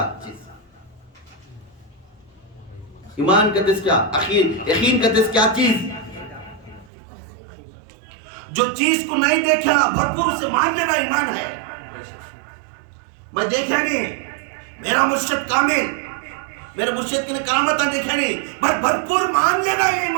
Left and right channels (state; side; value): drops out; left; at 6.9 s